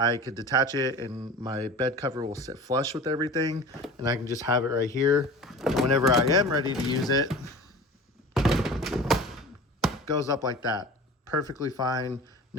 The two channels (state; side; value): normal; both; correlation 0.37